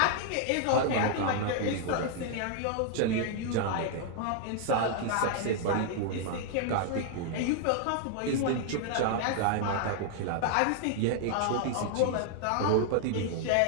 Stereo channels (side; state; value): both; different; correlation -0.01